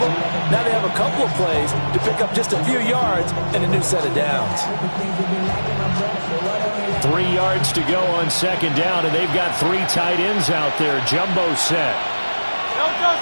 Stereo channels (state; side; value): inverted; both; correlation -1.00